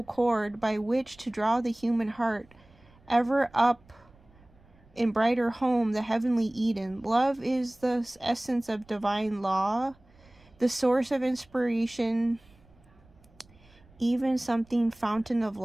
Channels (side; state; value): right; noise; rumble, 28 dB below the sound